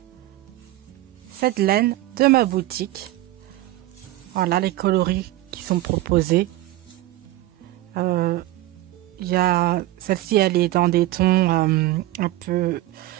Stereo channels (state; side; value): quieter; left; 16.1 dB